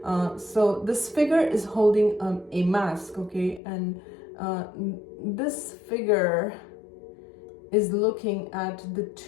So this figure is holding a mask, okay? And this figure is looking at the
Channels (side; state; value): right; drops out; at 3.6 s